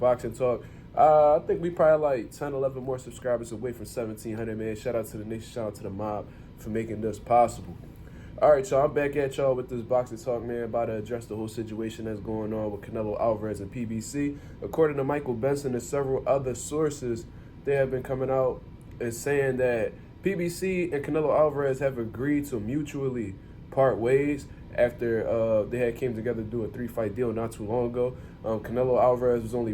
talk. I think we probably like 10, 11 more subscribers away from 1,700, man. Shout out to the nation. Shout out to the mob for making this possible. All right, y'all, I'm back at y'all with this boxing talk, man, about to address the whole situation that's going on with Canelo Alvarez and PBC. According to Michael Benson and several other sources, they have been coming out and saying that PBC and Canelo Alvarez have agreed to mutually part ways after they had came together to do a 3-fight deal not too long ago. Canelo Alvarez was only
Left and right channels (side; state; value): both; identical; correlation 1.00